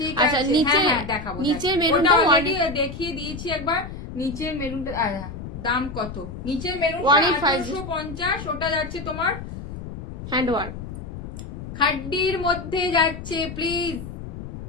আচ্ছা আছে, নিচে হ্যাঁ হ্যাঁ দেখাবো। নিচের ওটা মেরুনটা অলরেডি দেখিয়ে দিয়েছি একবার। নিচের মেরুনটা দাম কত? নিচের মেরুনটা 1850, ওটা যাচ্ছে তোমার হ্যান্ডওয়ার্ক খাড্ডির মধ্যে যাচ্ছে। Please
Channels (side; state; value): left; noise; rumble, 10 dB below the sound